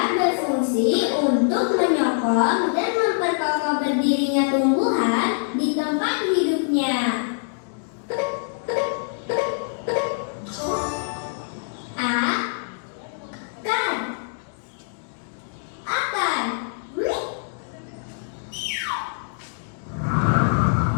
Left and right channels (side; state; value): right; silent; digital silence